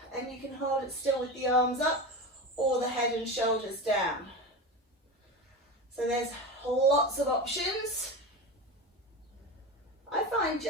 And you can hold it still with the arms up or the head and shoulders down. So there's lots of options. I find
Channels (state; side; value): normal; both; correlation 0.24